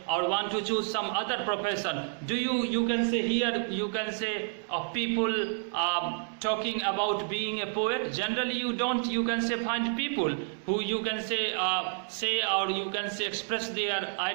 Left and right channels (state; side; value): silent; left; 58 dB below the other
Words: or want to choose some other profession. Do you can say, here, you can say, of people talking about being a poet? Generally, you don't, you can say, find people who, you can say, or you can say, express their